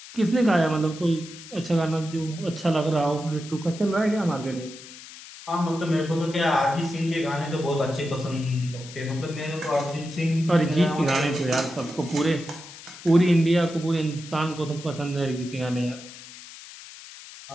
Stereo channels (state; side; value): noise; left; hiss, 16 dB below the sound